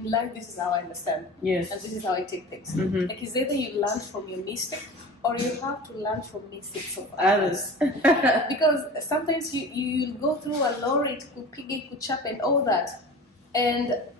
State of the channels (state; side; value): normal; both; correlation 0.36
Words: life, this is how I understand. Yes. And this is how I take things. Like, it's either you learn from your mistake or you have to learn from mistakes of others. Because sometimes you'll go through a lorry, it could pig, it could chop and all that. And